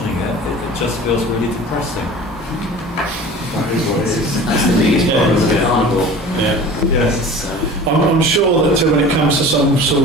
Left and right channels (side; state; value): both; normal; correlation 0.40